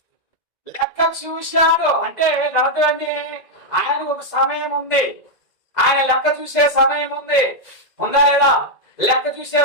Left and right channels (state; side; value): late; right; 2.0 ms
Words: చూశాడు అంటే అర్థం ఏంటి? ఆయనకు ఒక సమయం ఉంది. ఆయన లెక్క చూసే సమయం ఉంది. ఉందా లేదా? లెక్క చూసే